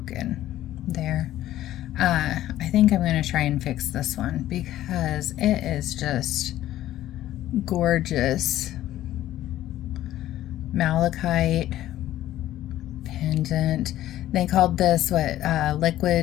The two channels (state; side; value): quieter; right; 13.6 dB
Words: there. I think I'm gonna try and fix this one because it is just gorgeous. Malachite pendant. They called this what,